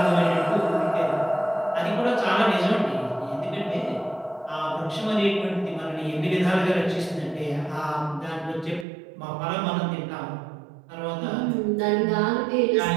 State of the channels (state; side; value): drops out; left; at 8.8 s